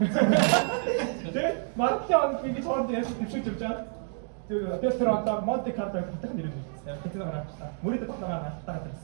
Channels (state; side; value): silent; left; 59 dB below the other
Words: Тэгээд магадгүй оног ингэж хооронд яаж төвшүүлж явж байгаа. Тэр одоо Монте Карло хотын нэрээр нэрлэгдсэн. Казиногоор алдартай. Мөрөд тогтоогоор алдартай